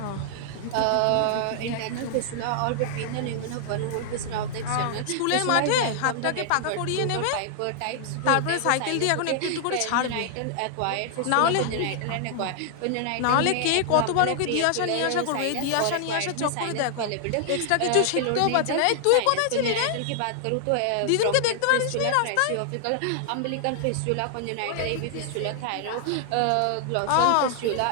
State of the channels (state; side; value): different; both; correlation 0.00